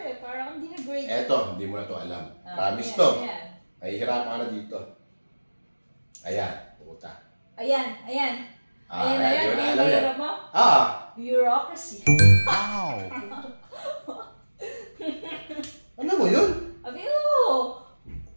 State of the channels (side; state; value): both; inverted; correlation -1.00